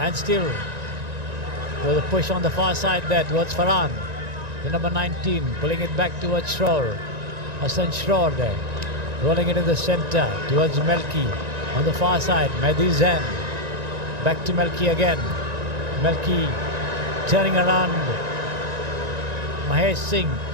still with a push on the far side there towards Farhan. The number 19, pulling it back towards Schroer. Hassan Schroer there. Rolling it in the center towards Melki. On the far side, Mehdi Zain. Back to Melki again. Melki turning around. Mahesh Singh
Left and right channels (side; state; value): left; late; 1.9 ms